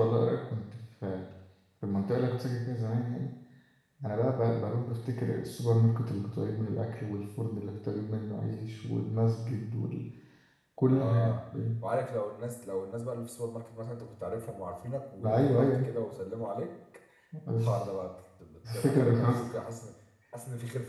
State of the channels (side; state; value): both; identical; correlation 1.00